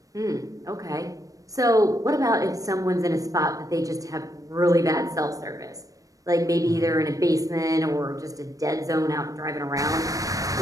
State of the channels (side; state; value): left; late; 0.16 ms